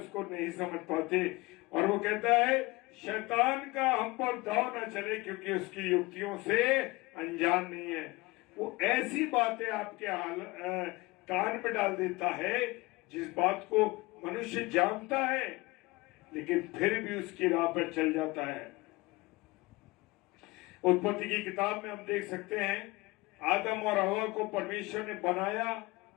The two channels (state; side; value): quieter; right; 22.7 dB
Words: नहीं समझ पाते। और वो कहता है शैतान का हम पर दाव न चले, क्योंकि उसकी युक्तियों से अनजान नहीं है। वो ऐसी बातें आपके कान में डाल देता है जिस बात को मनुष्य जानता है, लेकिन फिर भी उसकी राह पर चल जाता है। उत्पत्ति की किताब में हम देख सकते हैं, आदम और हवा को परमेश्वर ने बनाया,